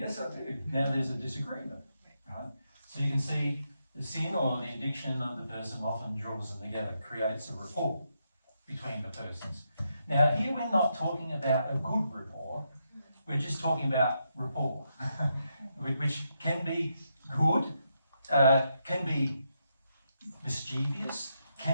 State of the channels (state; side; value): inverted; both; correlation -0.82